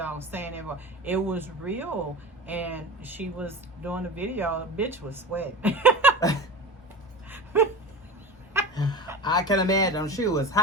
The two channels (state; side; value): normal; both; correlation 0.30